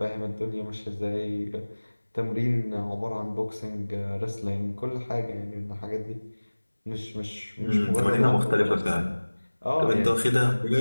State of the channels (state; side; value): inverted; both; correlation -1.00